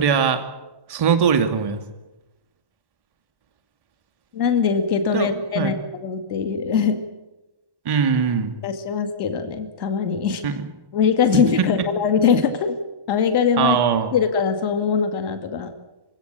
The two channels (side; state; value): left; late; 1.1 ms